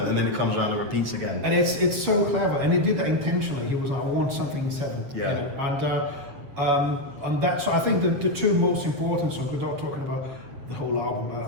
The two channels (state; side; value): late; left; 7.5 ms